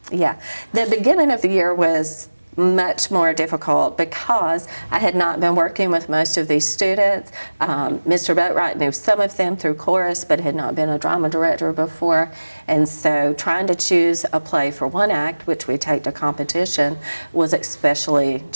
Yeah, the beginning of the year was much more difficult because I had not been working with most of these students. Mr. Boatwright knew some of them through chorus, but had not been a drama director before. And so trying to choose a play for one act, which we take to competition, was especially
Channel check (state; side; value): inverted; both; correlation -1.00